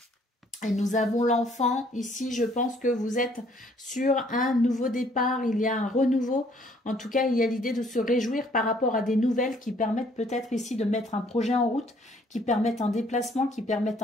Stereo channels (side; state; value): both; normal; correlation 0.62